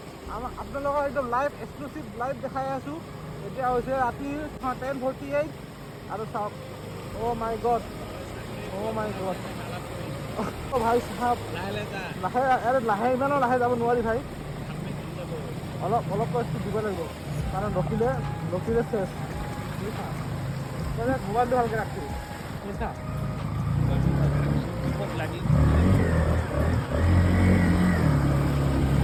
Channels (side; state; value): both; identical; correlation 1.00